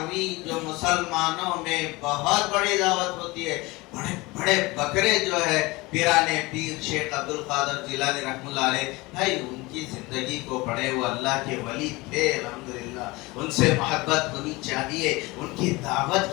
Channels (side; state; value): right; quieter; 22.7 dB